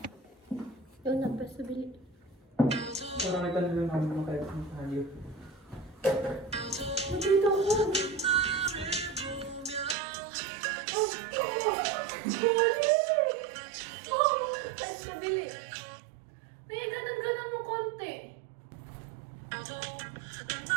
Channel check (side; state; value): left; drops out; at 10.0 s